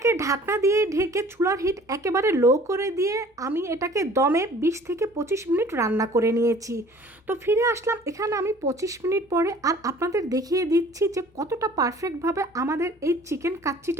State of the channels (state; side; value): normal; both; correlation 0.50